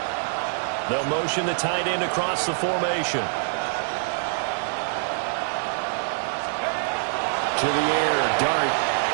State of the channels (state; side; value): silent; left; digital silence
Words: They'll motion the tight end across the formation. To the air, Dart.